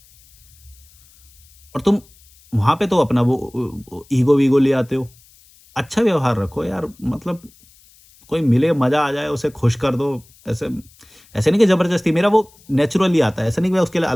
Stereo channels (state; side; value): noise; left; hiss, 28 dB below the sound